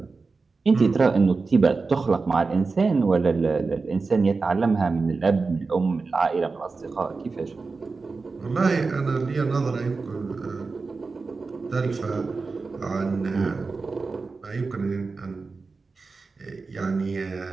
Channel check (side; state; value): left; quieter; 4.2 dB